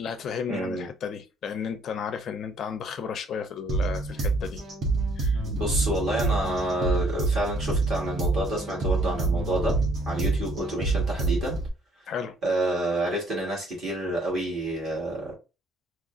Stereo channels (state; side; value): normal; both; correlation 0.63